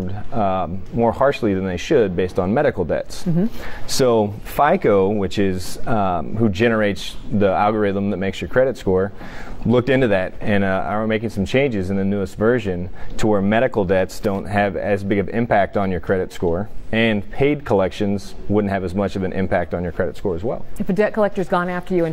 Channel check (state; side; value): identical; both; correlation 1.00